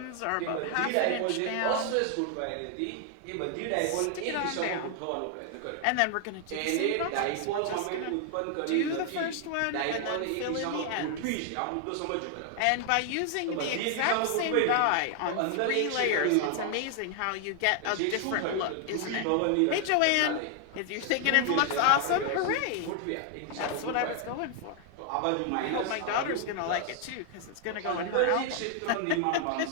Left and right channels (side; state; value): both; different; correlation 0.00